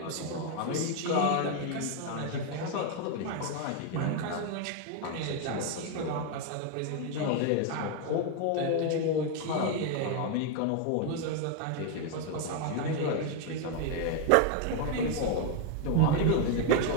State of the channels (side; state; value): both; different; correlation 0.01